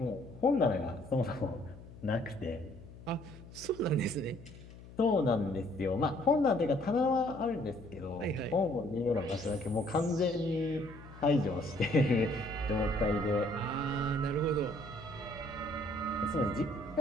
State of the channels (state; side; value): noise; left; hum, 17 dB below the sound